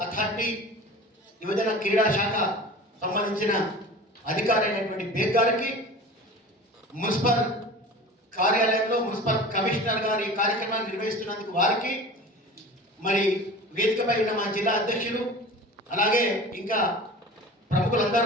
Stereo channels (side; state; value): both; normal; correlation 0.37